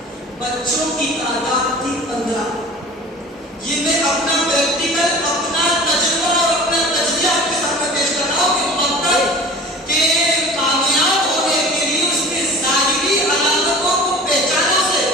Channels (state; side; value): normal; both; correlation 0.42